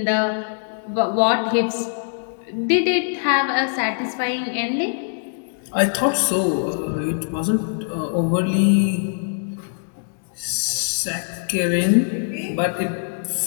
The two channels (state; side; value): silent; right; digital silence